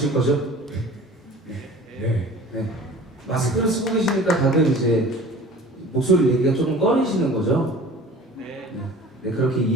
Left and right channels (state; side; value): normal; both; correlation 0.43